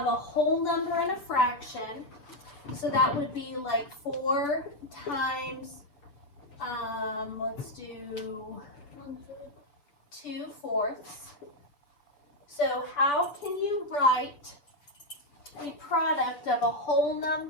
a whole number and a fraction? So that would be like 4 times, let's do 2/4. So how can you write a product of a whole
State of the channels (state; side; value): late; right; 6.9 ms